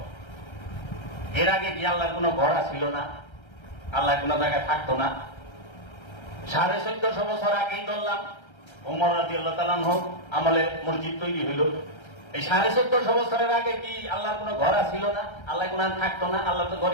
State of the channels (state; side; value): late; right; 1.3 ms